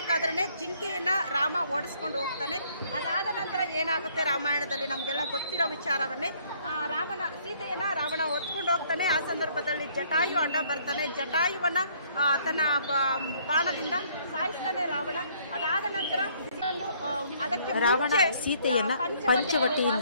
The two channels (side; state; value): both; inverted; correlation -0.63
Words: ಜಿಂಕೆಯನ್ನ ರಾಮ ಓಡಿಸ್ಕೊಂಡು ಹೋಗ್ತಾನೆ. ಅದಾದ ನಂತರ ಏನಾಗುತ್ತೆ ರಾಮಾಯಣದಲ್ಲಿ ನಮಗೆಲ್ಲ ಗೊತ್ತಿರೋ ವಿಚಾರವನ್ನೇ. ಸೀತೆಯನ್ನ ರಾವಣ ಹೊತ್ಕೊಂಡು ಹೋಗ್ತಾನೆ. ಆ ಸಂದರ್ಭದಲ್ಲಿ ಜಟಾಯು ಅಡ್ಡ ಬರ್ತಾನೆ. ಜಟಾಯುವನ್ನ ತನ್ನ ಬಾಣದಿಂದ ಸಾಯಿಸ್ತಾನೆ ರಾವಣ. ಅದಾದ ನಂತರ ರಾವಣ ಸೀತೆಯನ್ನ